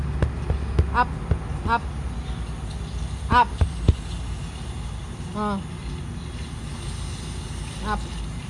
Up. Up. Up. Oh. Up.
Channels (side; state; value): both; identical; correlation 1.00